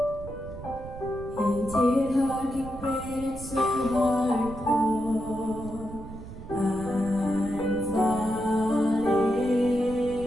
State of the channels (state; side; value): noise; right; rumble, 13 dB below the sound